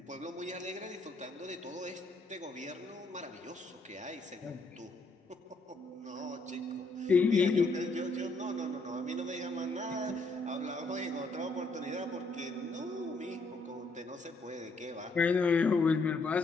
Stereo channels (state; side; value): quieter; right; 3.1 dB